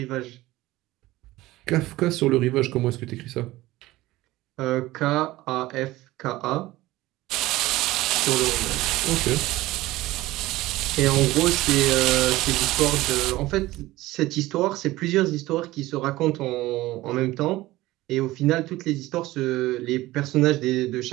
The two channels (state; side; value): quieter; left; 17.8 dB